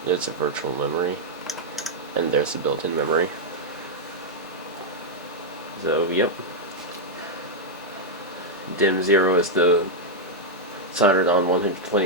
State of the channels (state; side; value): normal; both; correlation -0.02